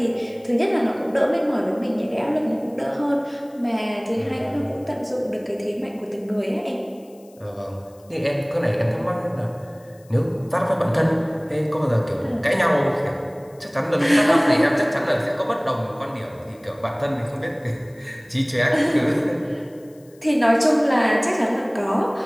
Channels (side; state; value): left; noise; hiss, 30 dB below the sound